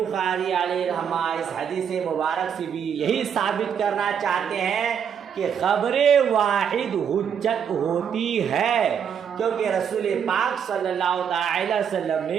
علیہ رحمہ اس حدیث مبارک سے بھی یہی ثابت کرنا چاہتے ہیں کہ خبر واحد حجت ہوتی ہے کیونکہ رسول پاک صلی اللہ تعالی وسلم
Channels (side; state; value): left; quieter; 7.8 dB